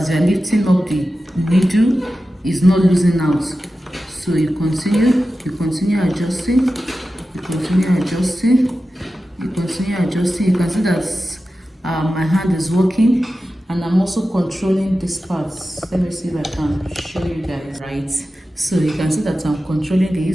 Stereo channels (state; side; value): normal; both; correlation 0.93